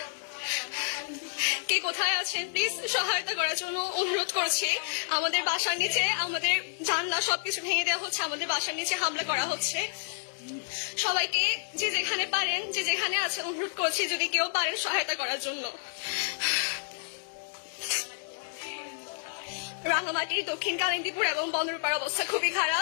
কে কোথায় আছেন please সহায়তা করার জন্য অনুরোধ করছি। আমাদের বাসার নিচে আমাদের জানলা সবকিছু ভেঙে দেওয়া হচ্ছে, আমাদের বাসার নিচে হামলা করা হচ্ছে। সবাইকে যে যেখানে পারেন, যে যেখানে আছেন, অনুরোধ করছি যদি কেউ পারেন সহায়তা করার জন্য। রাঙামাটি, দক্ষিণ কালিন্দীপুর এবং বন্দরপাড়ার অবস্থা খুবই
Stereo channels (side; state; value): right; silent; digital silence